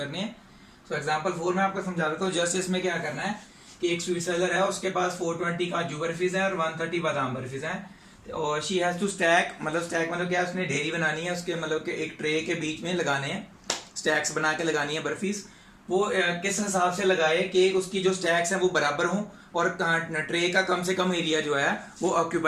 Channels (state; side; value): identical; both; correlation 1.00